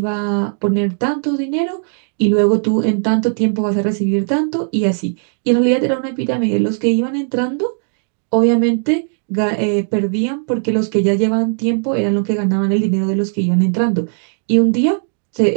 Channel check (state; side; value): silent; left; 61 dB below the other